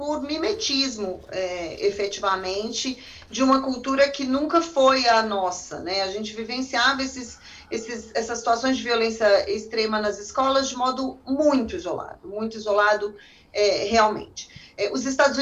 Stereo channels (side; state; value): both; identical; correlation 1.00